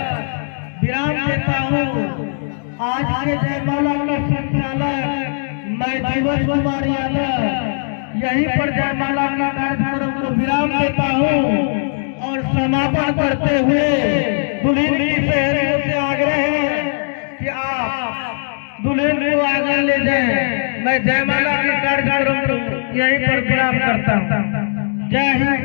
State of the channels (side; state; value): right; silent; digital silence